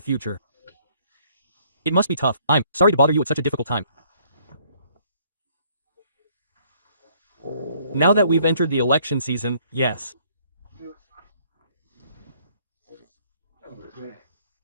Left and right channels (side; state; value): both; inverted; correlation -0.63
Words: It must be tough. I'm sorry to bother you at such a difficult time. Now that we've entered the election season, yes.